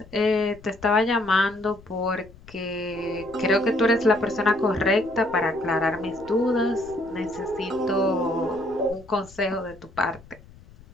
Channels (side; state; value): left; noise; rumble, 22 dB below the sound